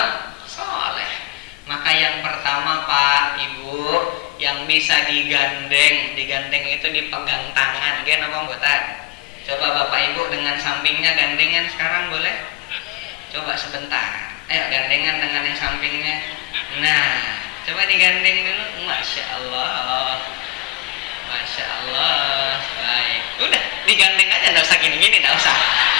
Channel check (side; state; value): right; quieter; 23.9 dB